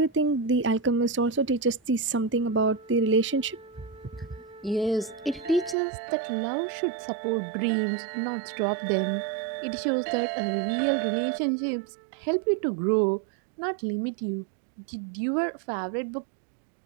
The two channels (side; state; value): left; drops out; at 5.8 s